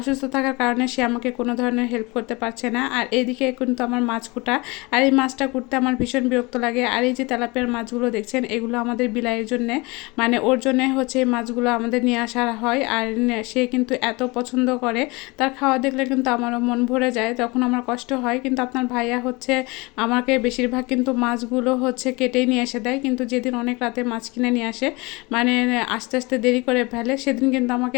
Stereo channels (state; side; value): quieter; right; 25.2 dB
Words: থাকার কারণে সে আমাকে কোনো ধরনের হেল্প করতে পারছে না। আর এদিকে কিন্তু আমার মাছ কুটা, আর এই মাছটা কুটতে আমার ভীষণ বিরক্ত লাগে। আর এই যে তেলাপিয়ার মাছগুলো দেখছেন, এগুলো আমাদের বিলাইয়ের জন্যে, মানে ওর জন্যে হচ্ছে এই মাছগুলো আমাদের নিয়ে আসা হয়। আর সে কিন্তু এত পছন্দ করে, তার খাওয়া দেখলে কিন্তু আমারও মন ভরে যায়, তখন আমার কষ্ট হয়। কিন্তু আপনার ভাইয়া হচ্ছে আমাকে বেশিরভাগ কিন্তু মাছগুলো হচ্ছে কেটেই নিয়ে এসে দেয়, কিন্তু যেদিন অনেক রাতে মাছ কিনে নিয়ে আসে, মানে আস্তে আস্তে দেরি করে ফেলে, সেদিন কিন্তু আমাকে